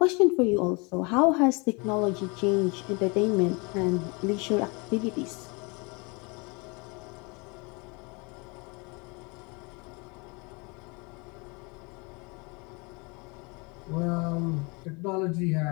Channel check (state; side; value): quieter; right; 29.6 dB